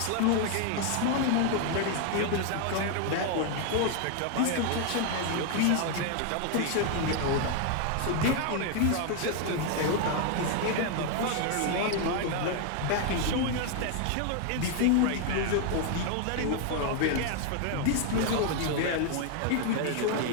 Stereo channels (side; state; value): both; different; correlation 0.00